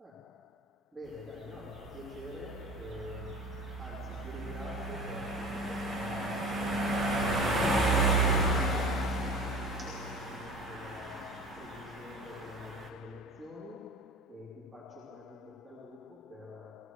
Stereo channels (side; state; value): both; normal; correlation 0.37